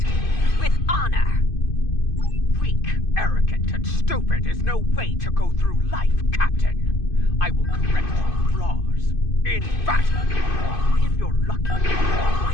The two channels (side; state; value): right; late; 2.5 ms